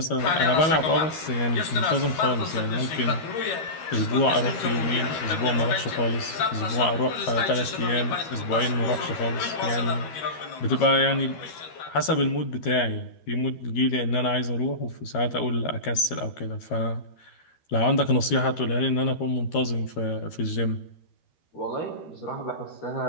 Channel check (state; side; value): late; right; 13 ms